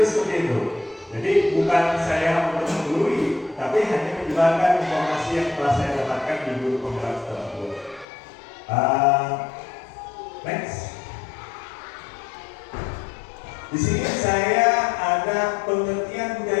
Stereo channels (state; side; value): drops out; right; at 8.1 s